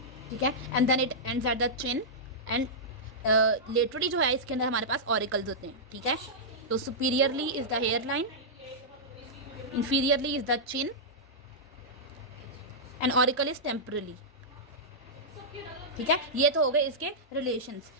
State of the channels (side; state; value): both; normal; correlation -0.12